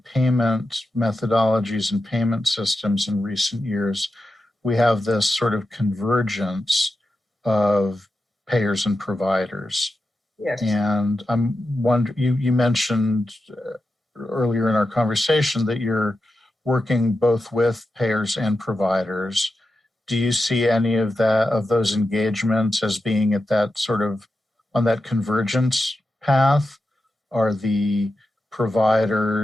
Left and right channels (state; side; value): normal; both; correlation 0.89